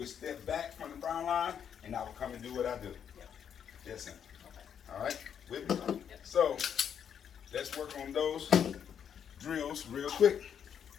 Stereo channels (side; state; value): right; quieter; 8.2 dB